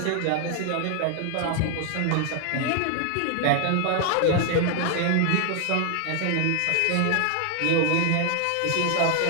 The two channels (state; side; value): different; both; correlation 0.00